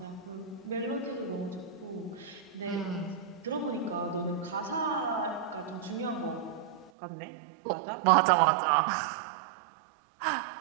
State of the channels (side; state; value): left; drops out; at 6.9 s